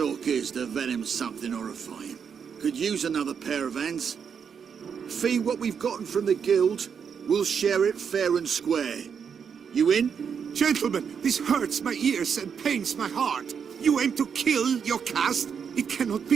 is the venom's something horrifying. Could use another pair of hands. Fee what we've gotten from the guild. We'll share it fair and square. You in? Gentlemen, this hurts my ears and pains my heart. You aim to kill your caste? It cannot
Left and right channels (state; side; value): quieter; left; 6.9 dB